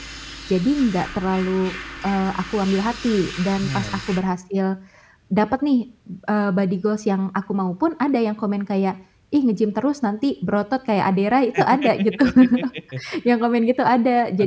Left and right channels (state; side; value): identical; both; correlation 1.00